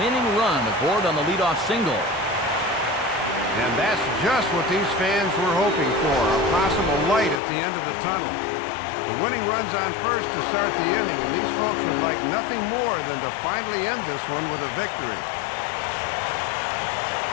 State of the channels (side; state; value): right; drops out; at 7.4 s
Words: winning run aboard on the leadoff single. And that's just what these fans were hoping for, a possible light at the end of the tunnel. The winning run's on first to start the inning, and these folks would like nothing more than to finally end this one with a victory.